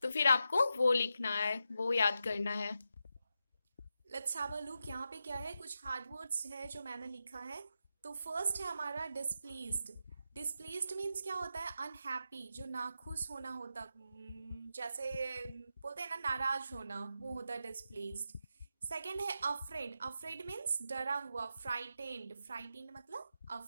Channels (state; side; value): inverted; both; correlation -0.87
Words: तो फिर आपको वो लिखना है, वो याद करना है। लेट्स हैव अ लुक, यहाँ पे क्या है, कुछ हार्ड वर्ड्स है जो मैंने लिखा है। तो फर्स्ट है हमारा डिसप्लीज्ड। डिसप्लीज्ड मीन्स क्या होता है, अनहैप्पी, जो नाखुश होना होता, जैसे बोलते हैं ना नाराज होना, वो होता है डिसप्लीज्ड। सेकेंड है अफ्रेड। अफ्रेड मीन्स डरा हुआ, फ्राइटेंड। फ्राइटेंड मतलब